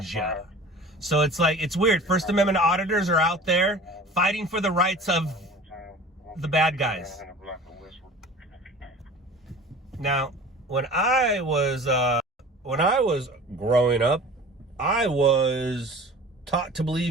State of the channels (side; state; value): both; normal; correlation 0.42